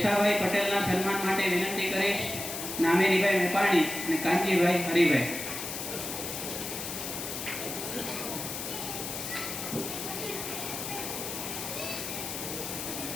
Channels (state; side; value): noise; left; hiss, 6 dB below the sound